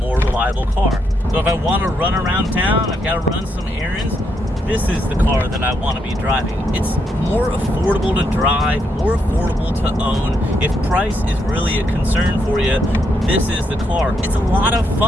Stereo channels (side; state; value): both; normal; correlation 0.78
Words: reliable car. So if I want to run around town, I've got to run some errands, this is the car that I want to be driving. It's more affordable to drive, more affordable to own. If price is really a concern for you, this is the car. It's a lot of